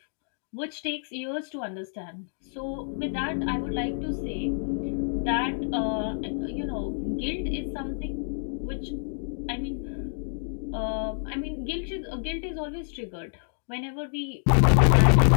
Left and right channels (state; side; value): silent; right; digital silence